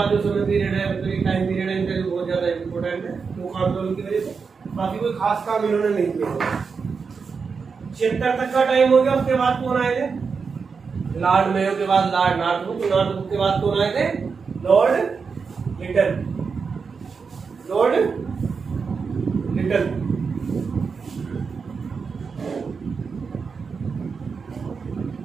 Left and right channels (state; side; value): quieter; left; 5.3 dB